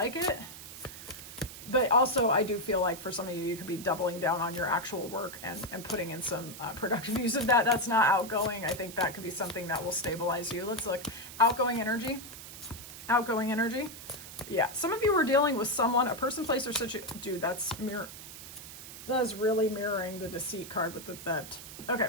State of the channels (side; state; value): right; noise; hiss, 13 dB below the sound